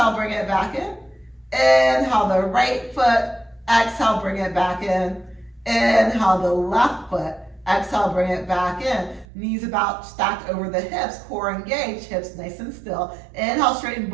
bring it back in. Inhale the right foot. Exhale, bring it back in. Inhale the left foot. Exhale, bring it back in. Knees about stacked over the hips, core engaged, hips nice and still. Inhale, straighten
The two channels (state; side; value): drops out; left; at 9.2 s